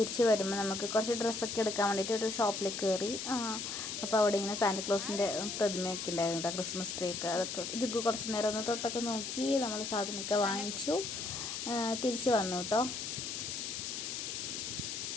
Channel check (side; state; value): left; noise; hiss, 4 dB below the sound